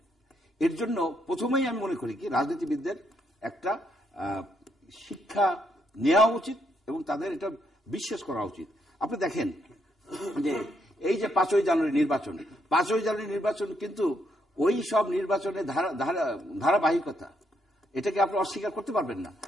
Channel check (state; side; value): normal; both; correlation 0.75